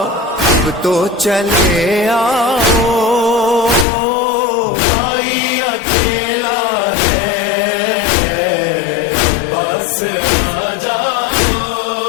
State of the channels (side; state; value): right; drops out; at 3.9 s